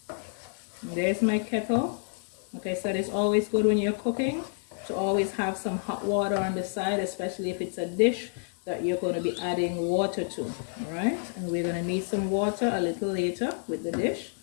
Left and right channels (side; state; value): right; silent; 59 dB below the other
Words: There's my kettle. Like I said, it's always good when you're cooking to always have some hot water on the side, especially if it's a dish that you're going to be adding water to. All right, and we're going to need some water a little later with the dish.